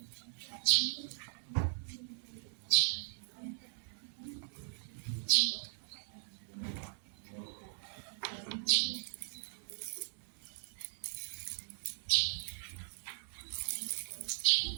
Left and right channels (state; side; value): silent; left; 52 dB below the other